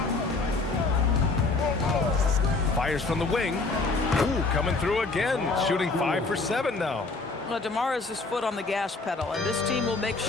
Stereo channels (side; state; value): right; quieter; 3.6 dB